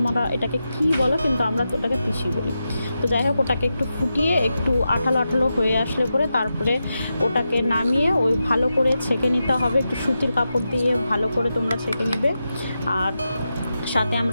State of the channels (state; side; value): inverted; both; correlation -0.89